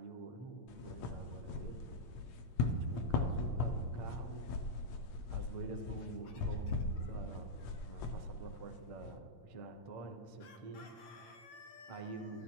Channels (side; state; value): right; late; 8.7 ms